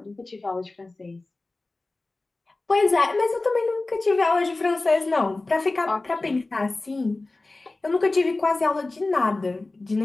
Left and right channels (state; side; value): quieter; right; 3.2 dB